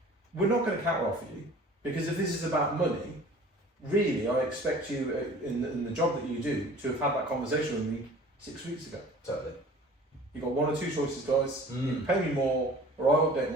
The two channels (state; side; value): normal; both; correlation 0.46